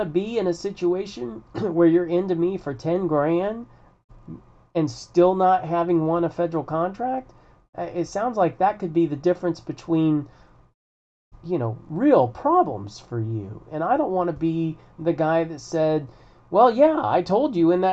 to be in a situation where you're into me for 10 grand and still not having won a federal contract? It sounds like that could be the difference between real problems for you. And I don't want to be the guy that said, well, yeah, I told you in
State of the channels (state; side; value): identical; both; correlation 1.00